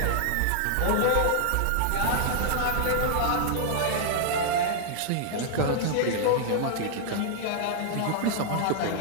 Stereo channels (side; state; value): both; different; correlation -0.01